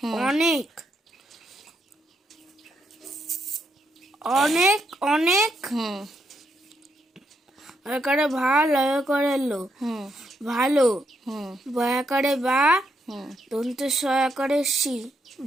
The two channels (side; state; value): both; normal; correlation 0.78